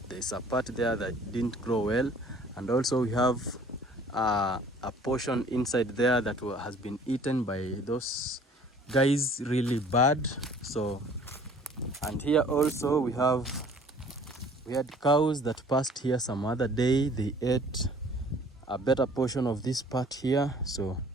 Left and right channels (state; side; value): normal; both; correlation 0.52